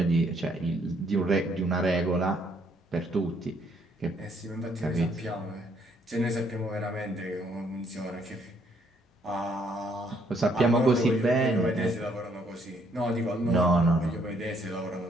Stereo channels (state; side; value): normal; both; correlation 0.69